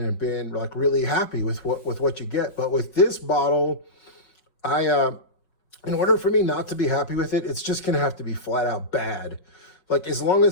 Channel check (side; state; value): right; late; 5.6 ms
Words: been like really happy with what you get. But with this bottle, in order for me not to be happy with it, it's just gonna have to be flat out bad. Like as long